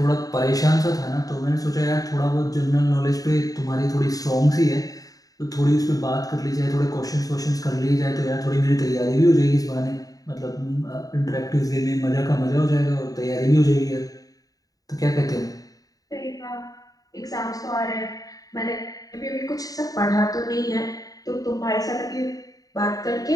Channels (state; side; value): late; right; 0.18 ms